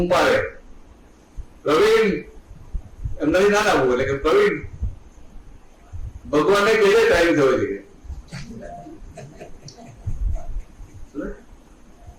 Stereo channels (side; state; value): both; identical; correlation 1.00